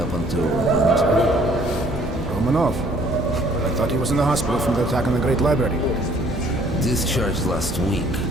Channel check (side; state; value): both; normal; correlation 0.59